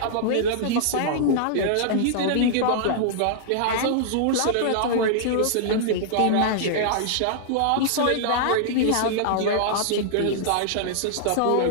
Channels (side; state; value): both; different; correlation -0.01